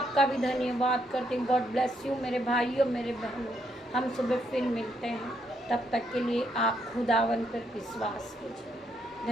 भी धन्यवाद करती हूँ। गॉड ब्लेस यू मेरे भाइयों मेरे बहनों। हम सुबह फिर मिलते हैं, तब तक के लिए आप खुदावन पर विश्वास कीजिए।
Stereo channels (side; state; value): both; normal; correlation 0.75